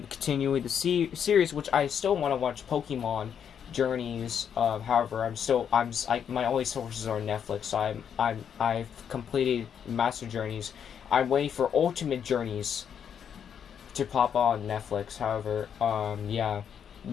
the series, which I still want to watch Pokemon Journeys. However, my only sources are Netflix. So I've completed Master Journeys. I'm waiting for Ultimate Journeys to pop on Netflix. However, yeah,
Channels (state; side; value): quieter; right; 8.1 dB